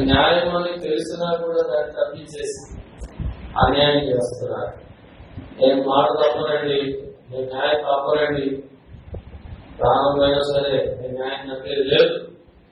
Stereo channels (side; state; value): both; identical; correlation 1.00